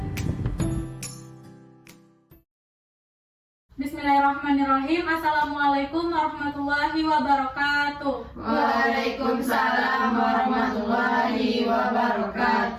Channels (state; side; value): identical; both; correlation 1.00